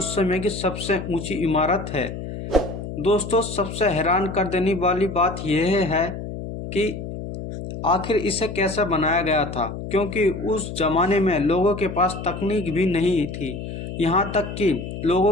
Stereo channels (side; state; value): left; noise; hum, 8 dB below the sound